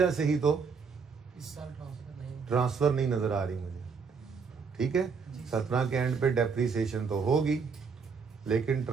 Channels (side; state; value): left; quieter; 5.5 dB